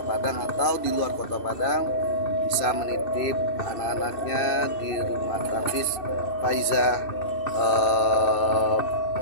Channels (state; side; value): late; right; 2.6 ms